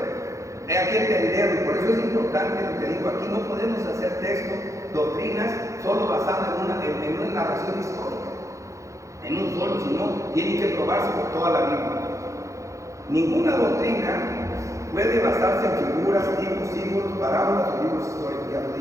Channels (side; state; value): left; late; 0.15 ms